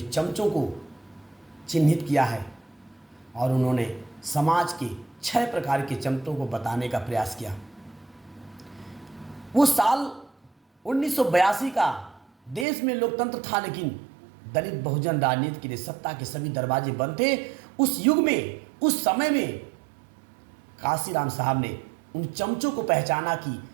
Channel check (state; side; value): drops out; left; at 12.7 s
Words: चमचों को चिन्हित किया है और उन्होंने समाज के 6 प्रकार के चमचों को बताने का प्रयास किया। वो साल 1982 का, देश में लोकतंत्र था लेकिन दलित बहुजन राजनीति के लिए सत्ता के सभी दरवाजे बंद थे। उस युग में, उस समय में काशीराम साहब ने उन चमचों को पहचाना कि